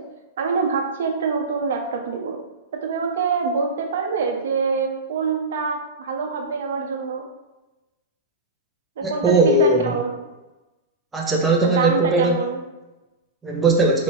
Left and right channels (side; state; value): left; quieter; 3.0 dB